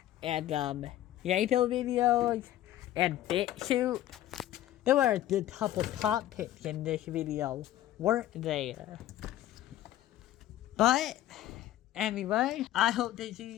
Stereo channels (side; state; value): right; quieter; 13.4 dB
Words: and Lego videos and Bitchute. There were a couple topics in this video, weren't there? But anyway, I hope to see